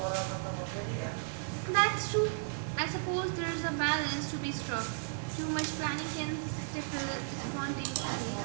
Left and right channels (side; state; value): left; silent; 55 dB below the other